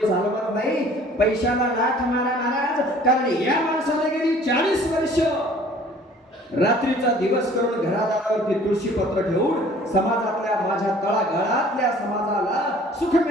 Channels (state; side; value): normal; both; correlation 0.52